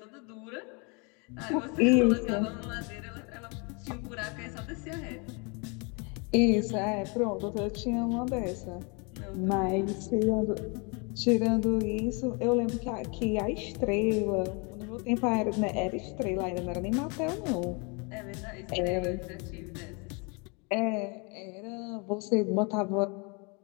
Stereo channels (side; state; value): right; quieter; 32.2 dB